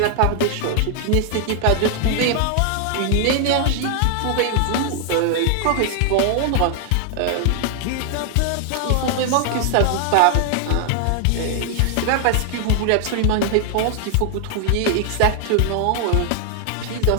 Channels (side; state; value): both; different; correlation 0.00